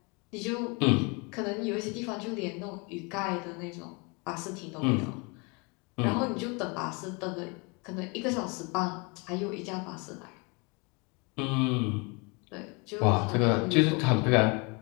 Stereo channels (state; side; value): quieter; right; 30.6 dB